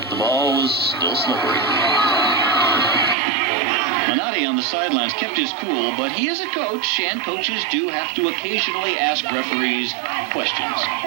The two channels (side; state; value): left; drops out; at 3.2 s